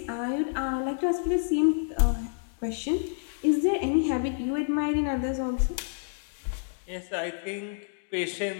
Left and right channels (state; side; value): silent; right; digital silence